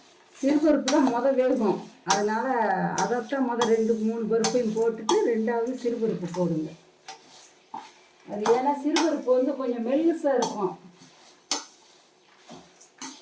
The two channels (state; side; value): identical; both; correlation 1.00